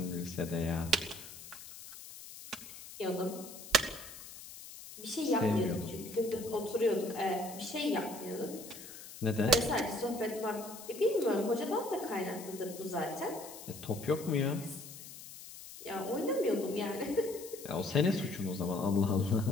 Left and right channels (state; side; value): noise; left; hiss, 14 dB below the sound